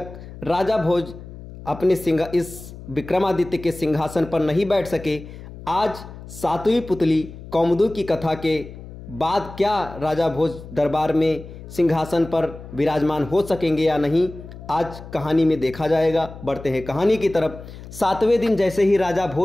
राजा भोज अपने इस विक्रमादित्य के सिंहासन पर नहीं बैठ सके। आज सातवीं पुतली कौमुदी की कथा के बाद क्या राजा भोज दरबार में सिंहासन पर विराजमान हो सकेंगे या नहीं, आज कहानी में देखा जाएगा। बढ़ते हैं कहानी की तरफ। सातवें दिन जैसे ही राजा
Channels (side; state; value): left; noise; hum, 15 dB below the sound